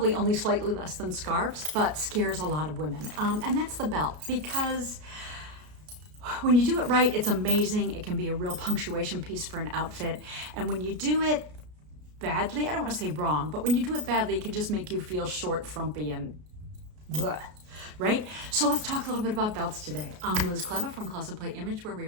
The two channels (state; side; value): late; left; 33 ms